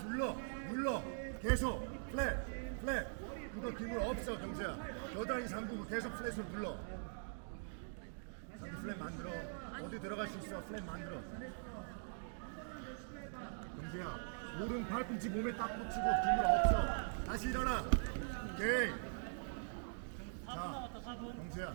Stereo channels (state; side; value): silent; left; digital silence